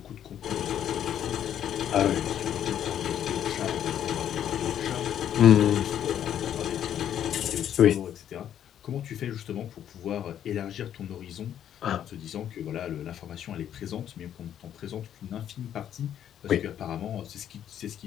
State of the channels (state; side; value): quieter; right; 10.1 dB